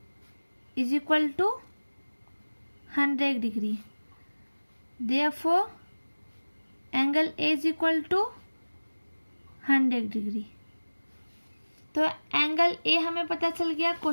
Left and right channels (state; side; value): inverted; both; correlation -1.00